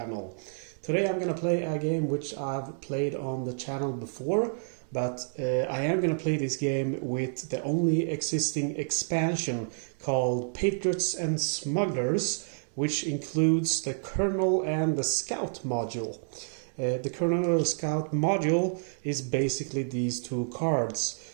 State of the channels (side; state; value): left; silent; digital silence